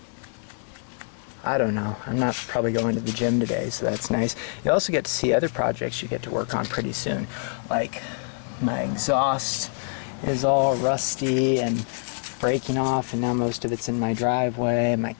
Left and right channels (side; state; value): right; silent; digital silence